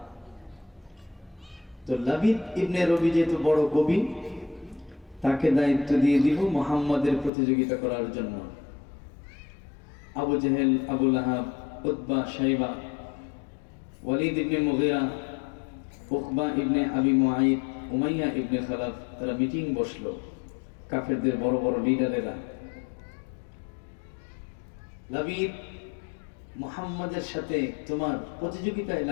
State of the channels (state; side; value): drops out; right; at 7.3 s